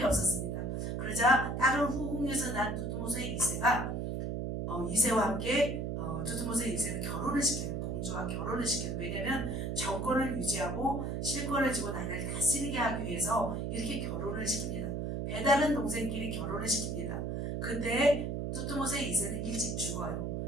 없었습니다. 그러자 다른 후궁에서 낳은 투트모스의 2세가 2세와 함께 투트모스의 2세는 결혼을 시켜요. 공주와 결혼을 시켜요. 왜냐하면 정권을 유지하고 실권을 쥐고 나라를 다스리게 하기 위해서 이렇게 결혼을 시킵니다. 배다른 동생끼리 결혼을 시킵니다. 그때 투트모스의 2세는 일찍 죽어요.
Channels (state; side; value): noise; right; hum, 2 dB below the sound